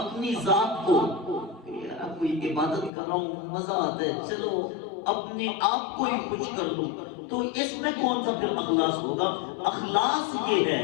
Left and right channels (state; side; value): drops out; right; at 2.9 s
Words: ذات کو، کوئی عبادت کر رہا ہوں مزہ آتا ہے چلو اپنے آپ کو ہی خوش کر دوں، تو اس میں کون سا پھر اخلاص ہوگا؟ اخلاص یہ ہے